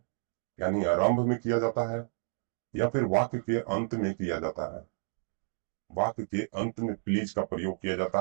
यानी आरंभ में किया जाता है, या फिर वाक्य के अंत में किया जाता है। वाक्य के अंत में प्लीज का प्रयोग किया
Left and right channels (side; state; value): left; silent; digital silence